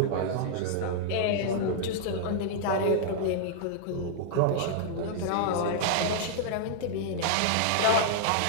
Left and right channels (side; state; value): both; different; correlation -0.01